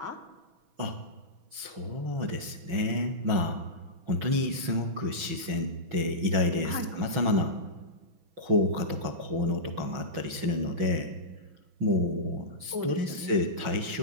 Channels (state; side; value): late; left; 6.1 ms